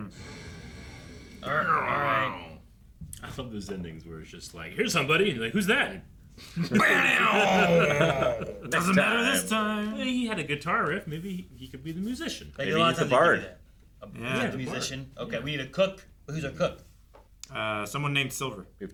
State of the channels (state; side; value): identical; both; correlation 1.00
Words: I love those endings where it's just like, here's somebody, and you're like, who's that? Doesn't matter this time. Well, he had a guitar riff. Maybe he could be the musician. Like, Maybe a lot he's of the times they do bard. that. Yeah, The musician. Okay, we need a cook. Who's our cook? Someone named Silver. We